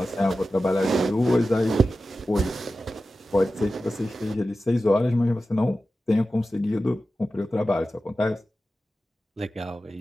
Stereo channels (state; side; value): normal; both; correlation 0.93